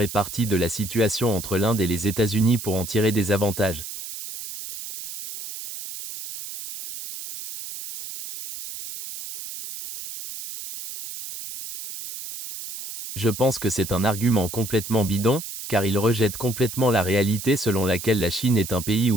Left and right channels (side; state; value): right; noise; hiss, 9 dB below the sound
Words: parti de la situation entre l'Inde et les États-Unis pour en tirer des avantages. Je pense que c'est un argument complètement bidon, car il rejette complètement la réalité selon laquelle la Chine est un pays